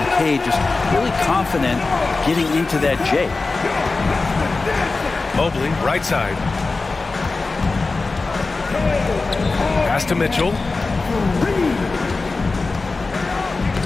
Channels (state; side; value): quieter; right; 3.7 dB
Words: Cade. Just really confident getting into that J. Mobley, right side. Pass to Mitchell.